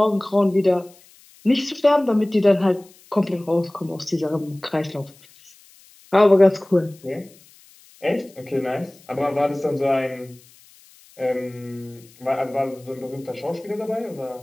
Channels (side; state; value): left; noise; hiss, 27 dB below the sound